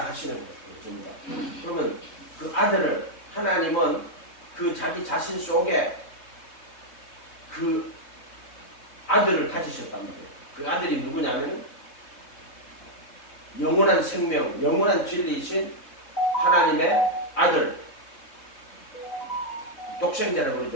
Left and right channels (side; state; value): right; late; 3.6 ms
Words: 거예요. 그러면 그 아들을 하나님은 그 자기 자신 속에 그 아들을 가지셨단 말이에요. 그 아들이 누구냐면 영원한 생명, 영원한 진리이신 하나님의 아들, 독생자라고